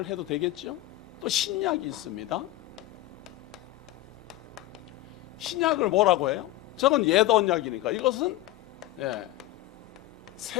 해도 되겠죠? 또 신약이 있습니다. 신약을 뭐라고 해요? 저건 옛 언약이니까 이것은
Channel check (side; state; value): right; quieter; 15.7 dB